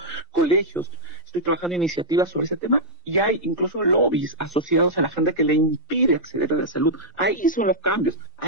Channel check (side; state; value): both; normal; correlation -0.08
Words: colegios, estoy trabajando en iniciativas sobre ese tema y hay incluso lobbies asociados a la gente que le impide acceder a la salud. Ahí son los cambios,